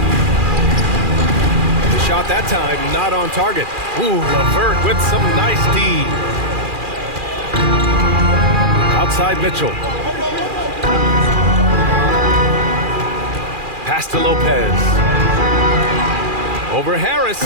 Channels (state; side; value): late; left; 2.4 ms